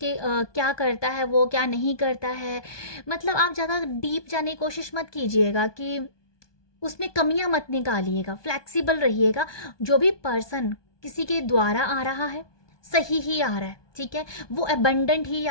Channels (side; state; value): right; late; 1.2 ms